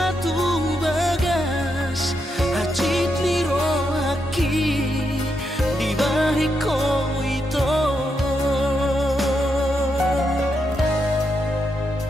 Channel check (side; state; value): both; normal; correlation 0.82